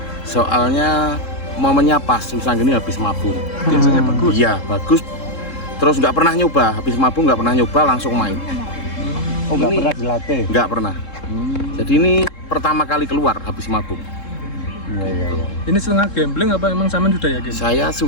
Soalnya momennya pas Wisang Geni habis mabung. Biasanya bagus. Iya bagus. Terus nggak pernah nyoba, habis mabung nggak pernah nyoba langsung main. Oh nggak pernah dilatih? Nggak pernah. Jadi ini pertama kali keluar habis mabung. Iya. Ini setengah gambling apa emang sampean sudah yakin? Saya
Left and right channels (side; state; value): right; late; 3.7 ms